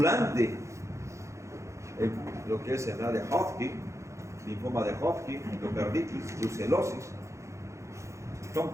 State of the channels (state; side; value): late; left; 0.14 ms